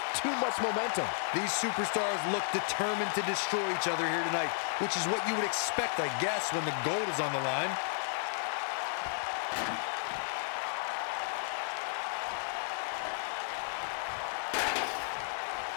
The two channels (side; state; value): right; silent; 56 dB below the other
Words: too much momentum. These superstars look determined to destroy each other here tonight, which is what you would expect, I guess, when the gold is on the line.